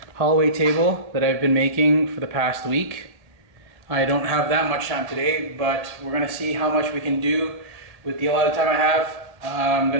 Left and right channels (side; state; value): left; late; 1.8 ms